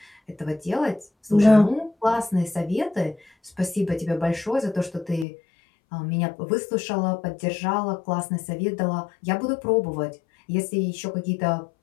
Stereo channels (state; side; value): drops out; right; at 5.2 s